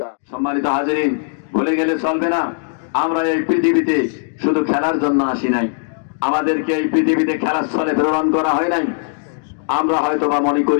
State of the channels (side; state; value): right; silent; digital silence